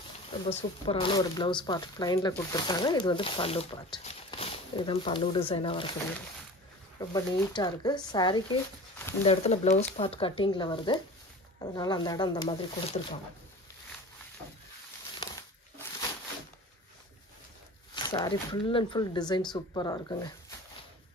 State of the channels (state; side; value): normal; both; correlation 0.38